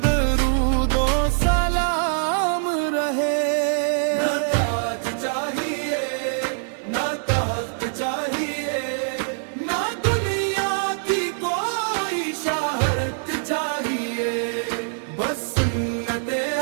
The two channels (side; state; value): left; silent; digital silence